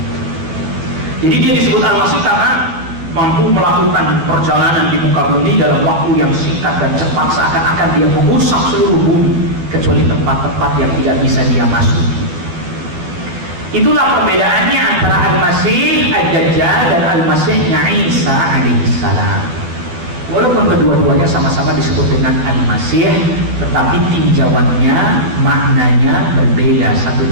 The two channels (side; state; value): left; late; 12 ms